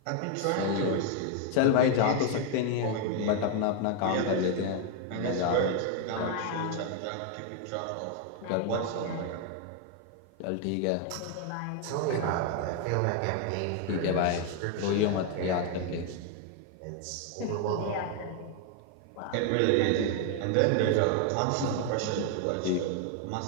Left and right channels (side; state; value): both; different; correlation 0.01